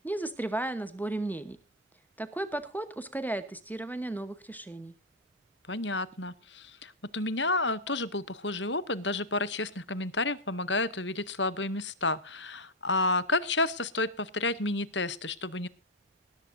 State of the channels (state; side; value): normal; both; correlation 0.01